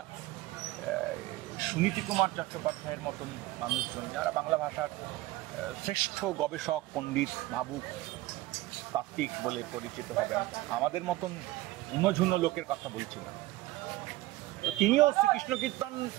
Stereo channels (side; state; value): left; quieter; 17.7 dB